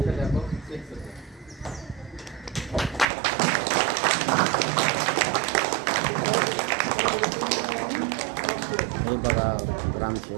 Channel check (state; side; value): drops out; left; at 3.1 s